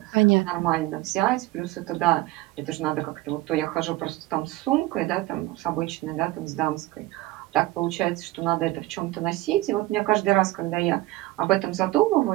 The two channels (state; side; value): quieter; left; 18.4 dB